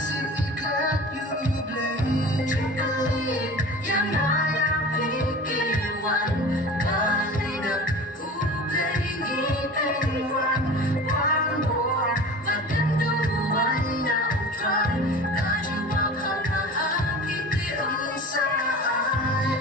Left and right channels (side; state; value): both; normal; correlation 0.37